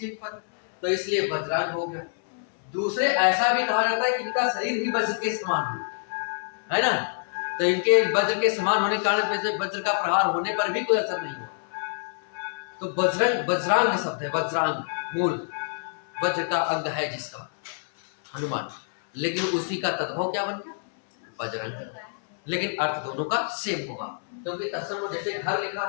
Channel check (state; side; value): silent; right; 61 dB below the other